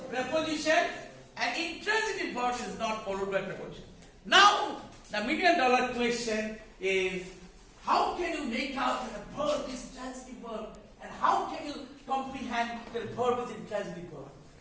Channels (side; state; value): both; identical; correlation 1.00